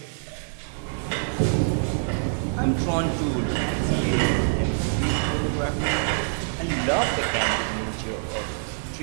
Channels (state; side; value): silent; left; digital silence